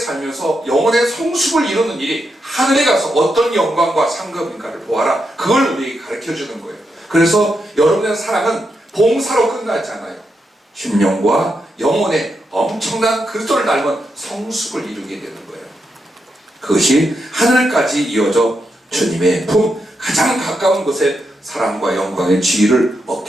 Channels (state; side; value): normal; both; correlation 0.84